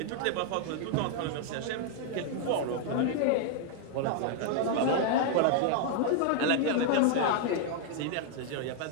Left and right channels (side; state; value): both; different; correlation 0.00